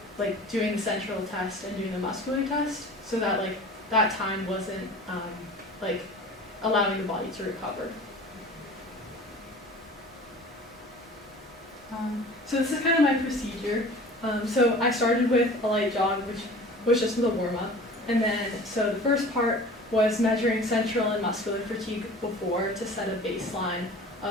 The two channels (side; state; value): both; normal; correlation 0.41